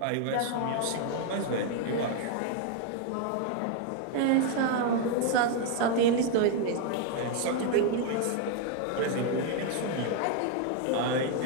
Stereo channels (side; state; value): both; different; correlation 0.00